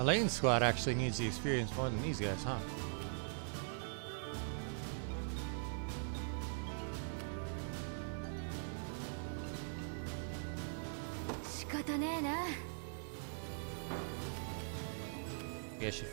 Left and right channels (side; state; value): left; silent; digital silence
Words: squad actually needs the experience more than these guys, huh? 仕方ねえな。 Maybe I should